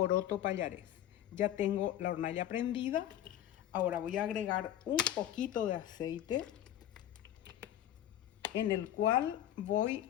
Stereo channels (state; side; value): quieter; right; 11.9 dB